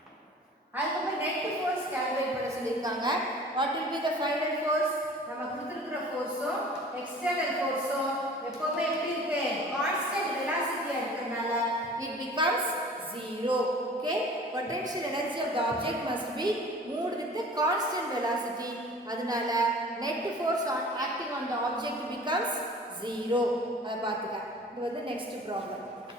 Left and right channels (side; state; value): both; normal; correlation 0.45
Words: அதுக்கப்புறம் net force calculate பண்ண சொல்லிருக்காங்க. What will be the final force? நம்ம கொடுத்திருக்கிற ஃபோர்ஸும் external ஃபோர்ஸும் எப்பவுமே எப்படி இருக்கு? Constant வெலாசிட்டியா இருக்கறனால it becomes 0. okay, potential energy of the object must be moved with the constant velocity. அதனால net force acting on the object becomes 0. அத பாத்துக்க. இது வந்து next problem.